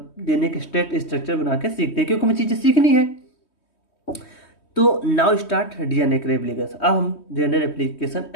डीएनए के स्टेट स्ट्रक्चर बना के सीखते हैं, क्योंकि हमें चीज़ें सीखनी है। तो नाउ स्टार्ट डीएनए के रेप्लिकेशन। अब हम डीएनए रेप्लिकेशन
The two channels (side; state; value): right; late; 3.2 ms